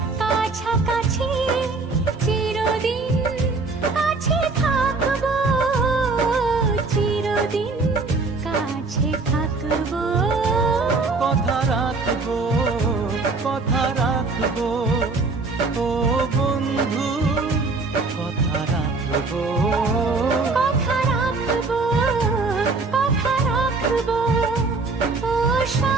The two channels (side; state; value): left; quieter; 3.8 dB